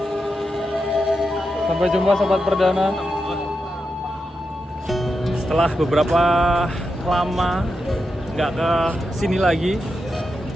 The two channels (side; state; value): both; normal; correlation 0.87